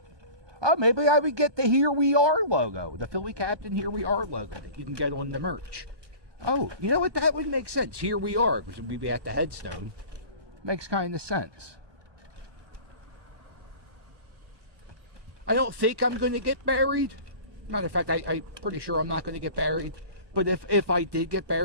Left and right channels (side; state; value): left; late; 1.2 ms